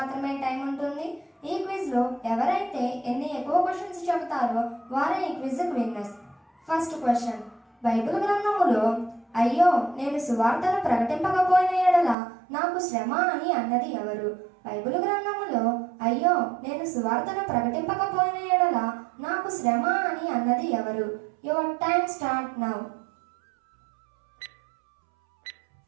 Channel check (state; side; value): drops out; left; at 12.2 s